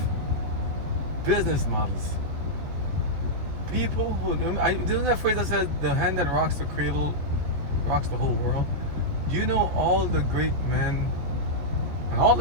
business models. People who, isn't that phrase that says the hand that rocks the cradle rocks the whole world? Do you know all the great men, and all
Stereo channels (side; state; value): left; late; 14 ms